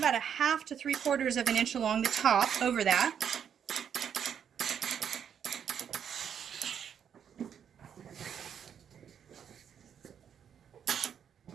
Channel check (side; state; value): left; quieter; 8.2 dB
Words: 1/2 to 3/4 of an inch along the top over that.